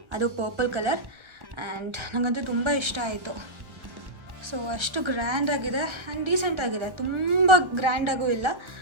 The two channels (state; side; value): late; left; 1.3 ms